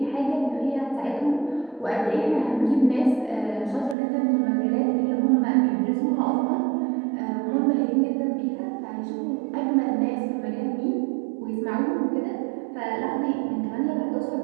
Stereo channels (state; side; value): drops out; left; at 4.0 s